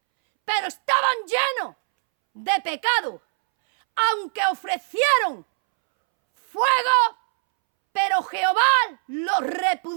pero estaban llenos de pecado, aunque ofrecieron fuego, pero Jehová los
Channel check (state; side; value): silent; left; 64 dB below the other